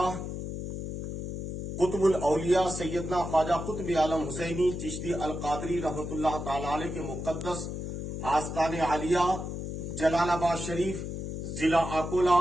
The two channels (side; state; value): left; noise; hum, 5 dB below the sound